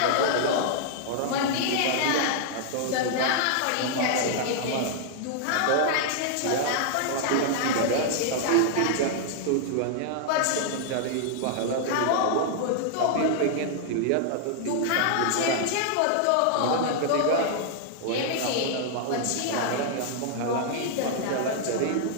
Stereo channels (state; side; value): different; both; correlation -0.01